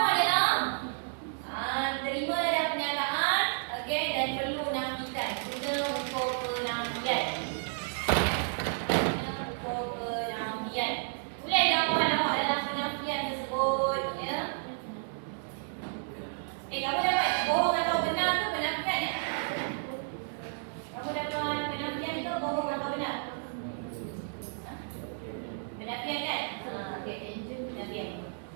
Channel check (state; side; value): silent; left; digital silence